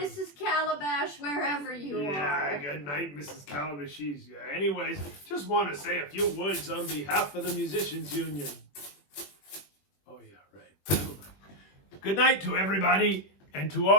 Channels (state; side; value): late; right; 21 ms